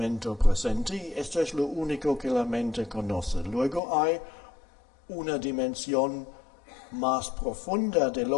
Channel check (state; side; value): drops out; right; at 3.8 s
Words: presente, y esto es lo único que la mente conoce. Luego hay una dimensión más profunda de